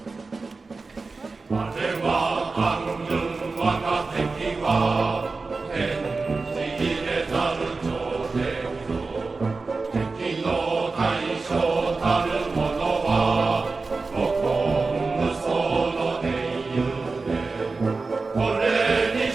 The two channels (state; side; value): quieter; left; 4.0 dB